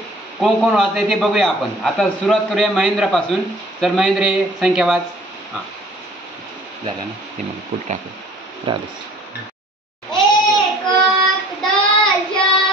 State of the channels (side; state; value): both; normal; correlation 0.52